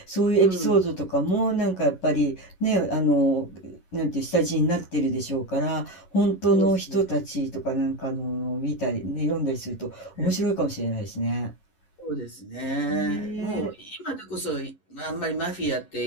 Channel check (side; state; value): right; late; 11 ms